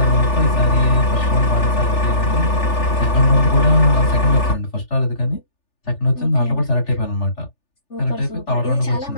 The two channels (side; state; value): right; late; 3.4 ms